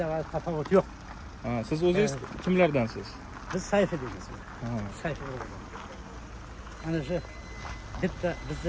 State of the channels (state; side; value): identical; both; correlation 1.00